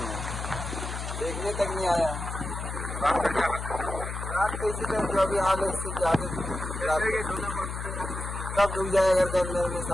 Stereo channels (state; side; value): noise; left; hum, 6 dB below the sound